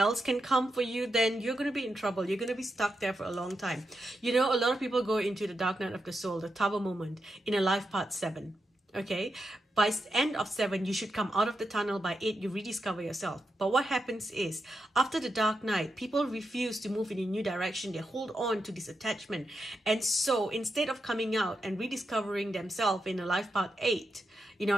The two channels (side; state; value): both; normal; correlation 0.86